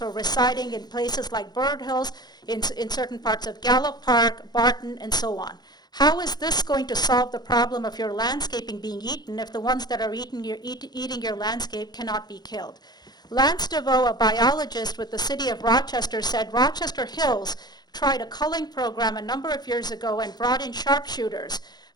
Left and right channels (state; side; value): late; right; 0.20 ms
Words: residing in places like Bird Hills, in certain parts of Gallup Park, Barton, and so on. How is this going to solve the problem of your landscaping being eaten if the ones that are eating your landscape cannot be killed? Lance DeVoe, a biologist with the city of Rochester, said Rochester Hills tried a culling program a number of years ago and brought in sharpshooters